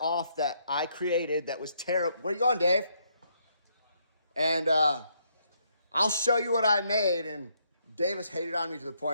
that I created that was terrible. Where you going, Dave? And I'll show you what I made, and Davis hated on me to the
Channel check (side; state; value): both; inverted; correlation -0.73